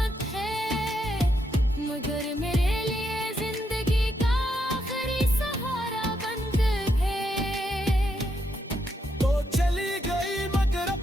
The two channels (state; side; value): normal; both; correlation 0.79